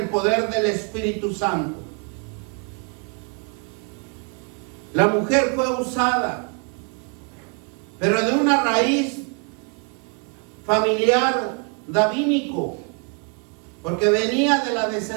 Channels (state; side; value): quieter; left; 38.2 dB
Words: poder del Espíritu Santo. La mujer fue usada, pero de una raíz familiar davínico, porque venía de la